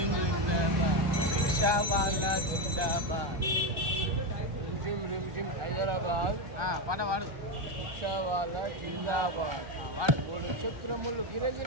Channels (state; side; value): late; left; 1.2 ms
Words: ring rickshaw వాళ్ళ జిందాబాద్. హైదరాబాద్ పాట వాడు. రిక్షా వాళ్ళ జిందాబాద్ వాడు. 3 చక్రములు